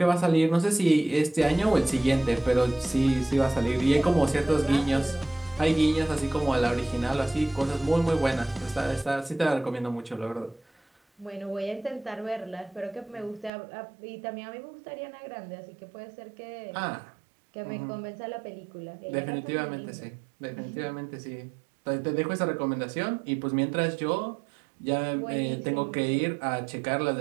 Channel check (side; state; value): left; drops out; at 13.5 s